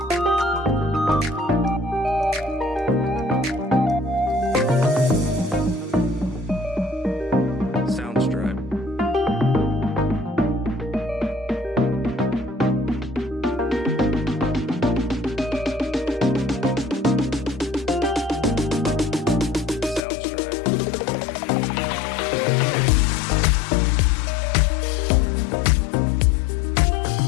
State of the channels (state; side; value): drops out; right; at 20.0 s